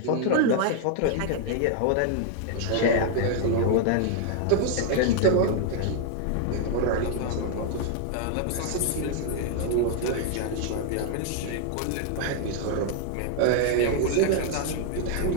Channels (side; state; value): both; different; correlation 0.00